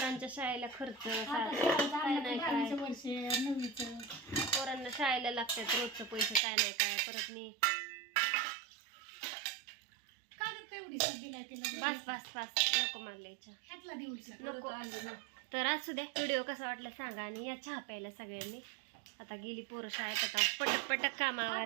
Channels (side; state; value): left; drops out; at 6.4 s